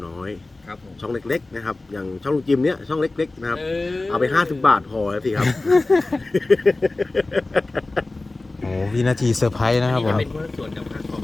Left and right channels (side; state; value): right; quieter; 3.1 dB